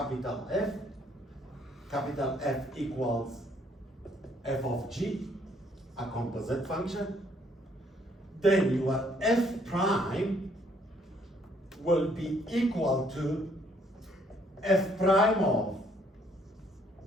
F equals f of g, a composite function, then your f prime will be equal to f prime of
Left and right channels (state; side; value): normal; both; correlation 0.66